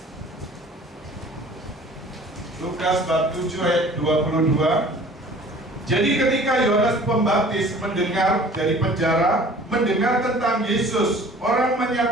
Lukas bab 7 ayat 22. Jadi ketika Yohanes Pembaptis mendengar dari penjara, mendengar tentang Yesus, orang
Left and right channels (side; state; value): both; normal; correlation 0.48